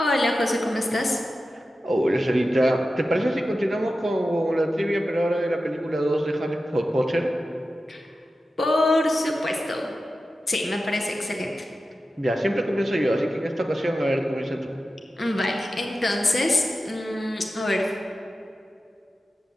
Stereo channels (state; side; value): normal; both; correlation 0.93